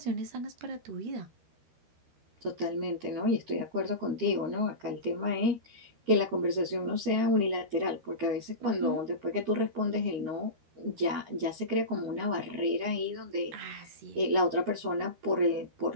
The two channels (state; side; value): late; left; 13 ms